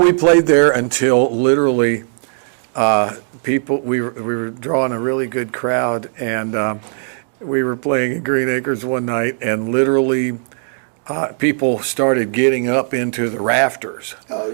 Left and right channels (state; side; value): silent; left; 60 dB below the other